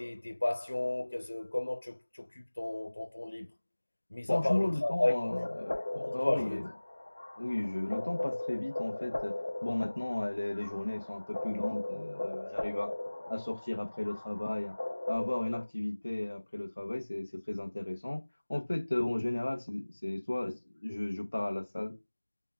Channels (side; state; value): both; inverted; correlation -1.00